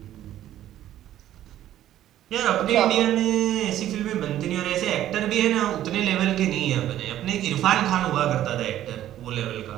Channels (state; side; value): quieter; left; 12.5 dB